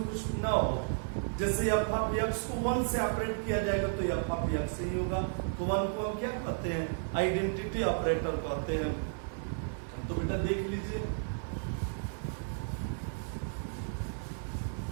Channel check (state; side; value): silent; left; 56 dB below the other